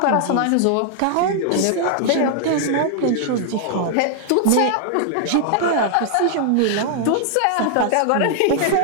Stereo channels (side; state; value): both; different; correlation 0.00